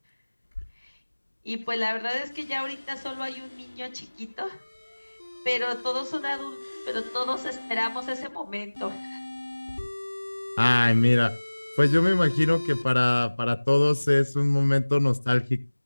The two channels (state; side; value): inverted; both; correlation -1.00